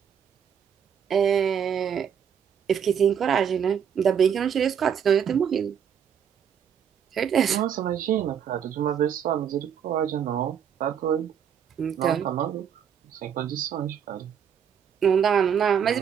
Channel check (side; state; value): left; quieter; 8.0 dB